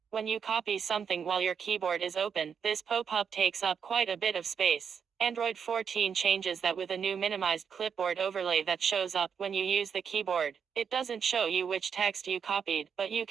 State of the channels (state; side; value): quieter; left; 6.9 dB